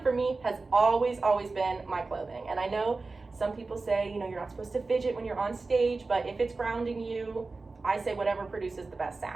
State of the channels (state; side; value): quieter; left; 3.7 dB